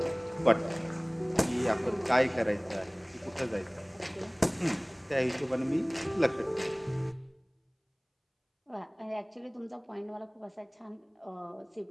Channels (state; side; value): identical; both; correlation 1.00